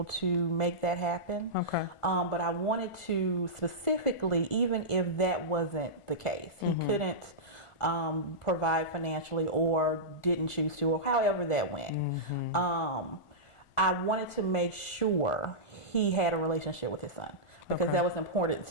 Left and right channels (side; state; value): right; late; 1.4 ms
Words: to make that happen. Okay. But I wanted to specifically, even if that wasn't the case, he couldn't provide financially or didn't choose to, or however that went. I wanted to make sure he had a relationship with his son, because that was important